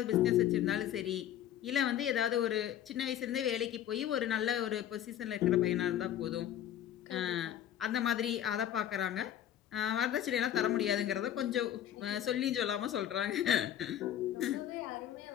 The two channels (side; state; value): right; quieter; 11.0 dB